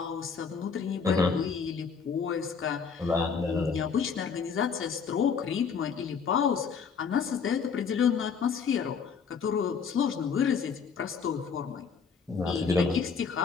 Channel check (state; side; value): quieter; right; 6.1 dB